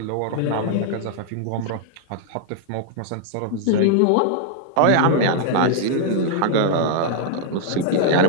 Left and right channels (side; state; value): both; different; correlation -0.01